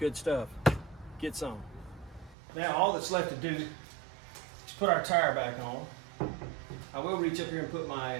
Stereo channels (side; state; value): left; drops out; at 2.4 s